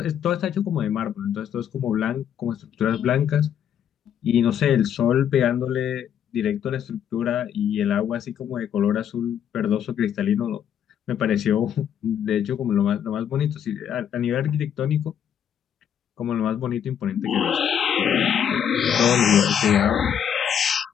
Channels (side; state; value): right; quieter; 9.0 dB